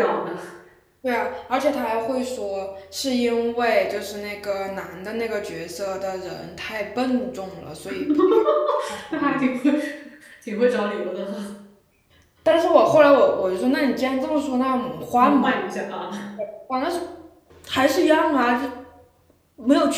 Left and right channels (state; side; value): identical; both; correlation 1.00